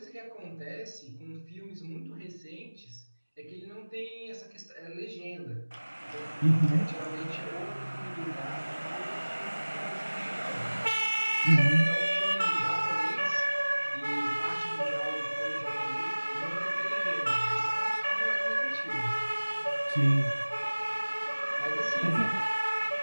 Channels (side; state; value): both; inverted; correlation -1.00